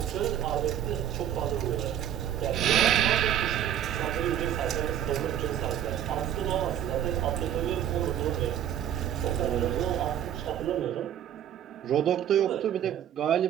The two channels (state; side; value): quieter; left; 10.6 dB